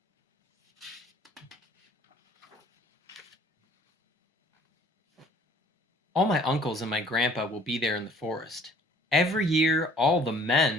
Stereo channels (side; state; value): both; normal; correlation 0.55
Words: All my uncles and my grandpa will be there in the forest. Every year, all the